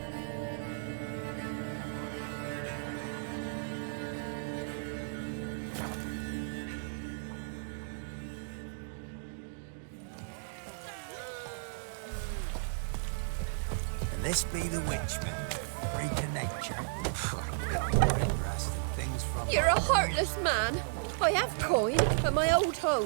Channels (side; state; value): left; silent; digital silence